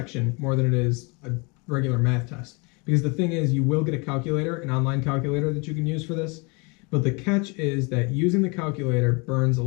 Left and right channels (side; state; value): right; quieter; 30.1 dB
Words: more than it is a regular math test. Because the thing is, you will get a calculator, an online calculator that you can use for this. But the catch is that using the calculator burns a